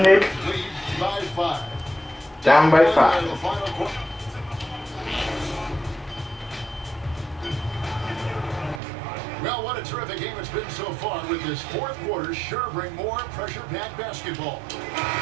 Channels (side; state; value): left; drops out; at 8.8 s